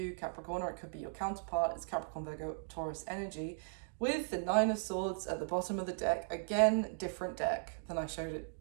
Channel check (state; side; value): silent; left; digital silence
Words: Capricorn, or it could be your counterpart. It's Capricorn, Virgo, Taurus energy, with the Nine of Swords at the bottom of the deck. Again, different deck than I showed it